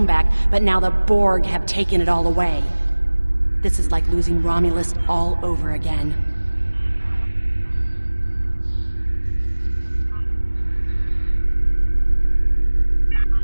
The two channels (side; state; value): both; inverted; correlation -1.00